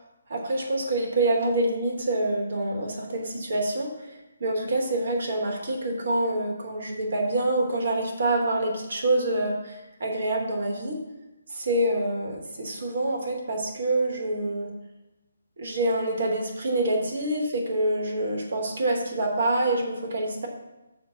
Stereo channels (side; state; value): both; inverted; correlation -0.67